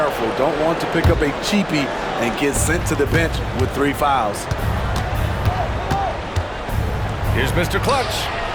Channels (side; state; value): both; identical; correlation 1.00